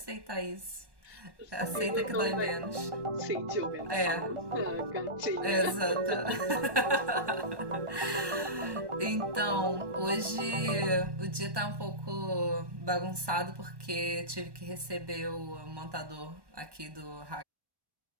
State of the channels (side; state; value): left; late; 1.2 ms